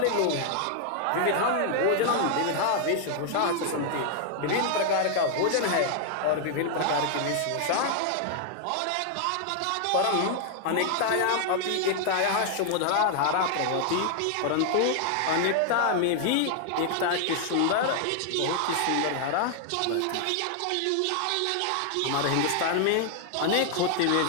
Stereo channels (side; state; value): both; different; correlation 0.00